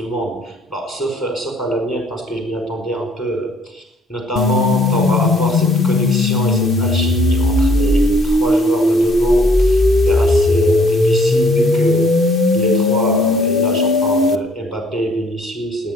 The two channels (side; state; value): both; normal; correlation 0.61